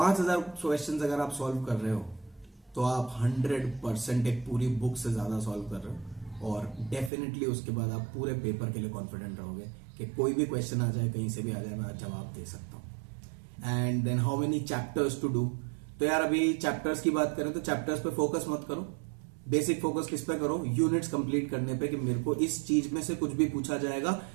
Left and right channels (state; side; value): drops out; left; at 7.1 s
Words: questions अगर आप सॉल्व कर रहे हो तो आप 100% एक पूरी बुक से ज्यादा सॉल्व कर रहे हो। और डेफिनेटली उसके बाद आप पूरे पेपर के लिए कॉन्फिडेंट रहोगे कि कोई भी क्वेश्चन आ जाए, कहीं से भी आ जाए, मैं जवाब दे सकता हूं। And then how many chapters to do. तो यार अभी चैप्टर्स की बात करें तो चैप्टर्स पे फोकस मत करो। बेसिक फोकस किस पे करो, यूनिट्स कंप्लीट करने पे कि मेरे को इस चीज में से कुछ भी पूछा जाएगा